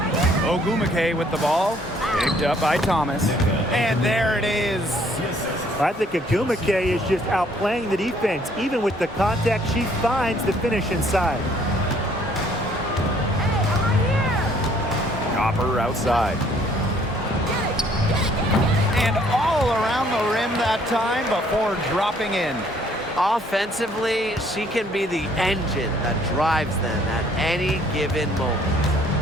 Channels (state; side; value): normal; both; correlation 0.62